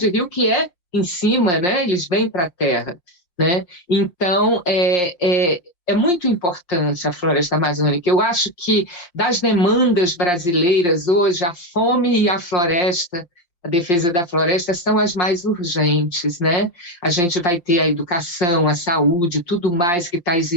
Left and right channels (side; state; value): right; late; 5.7 ms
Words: rios que em cima, né? Eles vêm para a terra, né? Então, é muito importante a floresta amazônica. Eu acho que das demandas brasileiras hoje, a fome e a floresta, a defesa da floresta são as mais urgentes, né? A gente vai ter a educação, a saúde, tudo mais que está